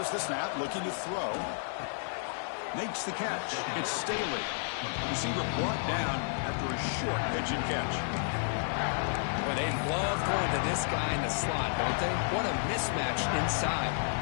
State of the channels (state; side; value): silent; right; digital silence